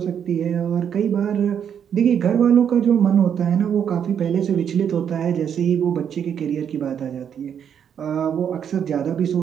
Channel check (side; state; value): left; quieter; 8.3 dB